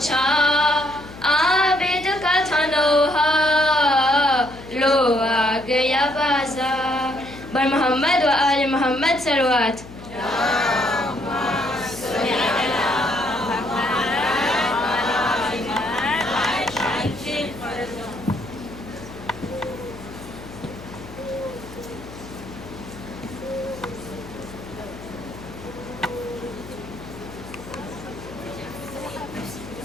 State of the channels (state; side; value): noise; left; hum, 16 dB below the sound